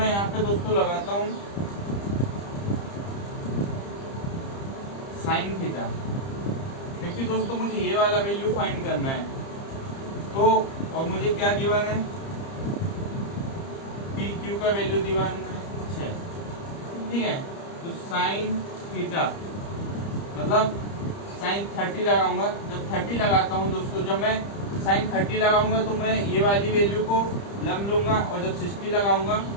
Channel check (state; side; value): late; right; 30 ms